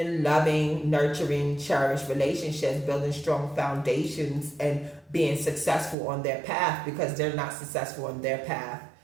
loving, nurturing, cherished relationships, building strong foundations and being successful on their path because they're not successful on their path.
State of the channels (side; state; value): left; drops out; at 6.0 s